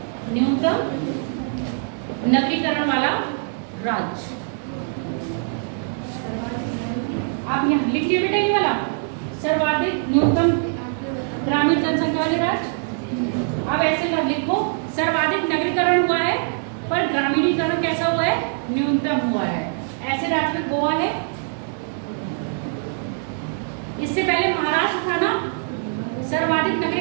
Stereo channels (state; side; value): silent; left; 62 dB below the other